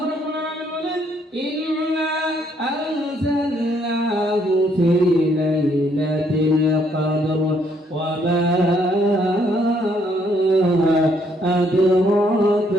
রাব্বুল আলামিন বলেন, ইন্না আনজালনাহু ফি লাইলাতিল কদর ওয়া মা أدراك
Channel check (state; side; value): normal; both; correlation 0.69